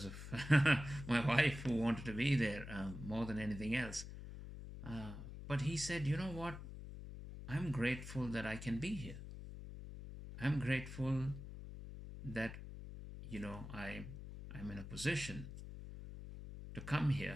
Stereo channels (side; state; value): left; noise; hum, 10 dB below the sound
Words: my wife who wanted to be there more than anything else. But he said, you know what? I'm grateful that I can be here. I'm grateful that I'm in a position to come